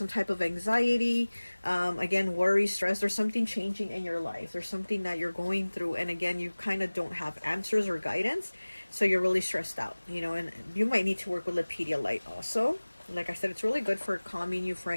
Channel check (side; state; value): both; inverted; correlation -1.00